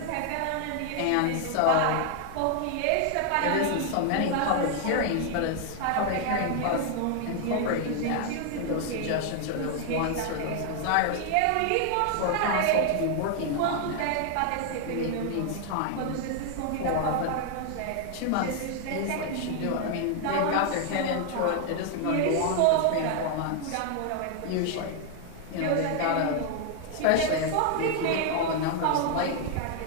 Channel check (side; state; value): both; different; correlation 0.00